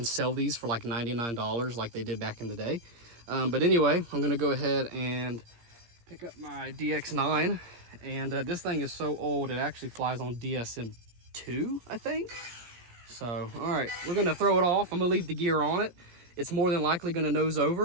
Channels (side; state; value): left; late; 17 ms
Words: sell these for like $99 like they did back in the day. But anyway, I'm gonna go ahead and pick up my DX9, and this thing is so old it actually flies on DSM-2, I think. So all right, we're gonna throw it off. I'm gonna leave the gear on it. It's more than likely gonna nose